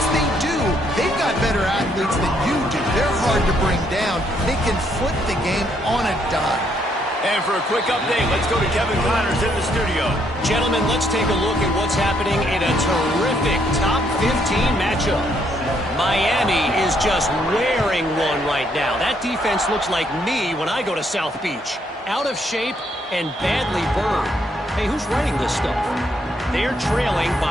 they do, they've got better athletes than you do. They're hard to bring down. They can flip the game on a dime. And for a quick update, let's go to Kevin Connors in the studio. Gentlemen, let's take a look at what's happening in a terrific top 15 matchup. Miami is just wearing one right now. That defense looks like me when I go to South Beach. Out of shape and badly burned. Hey, who's writing this stuff? They're trailing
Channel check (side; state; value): both; normal; correlation 0.72